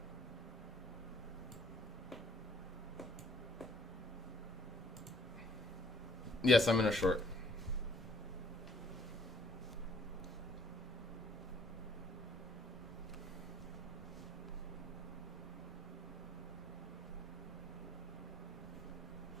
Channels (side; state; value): both; normal; correlation 0.61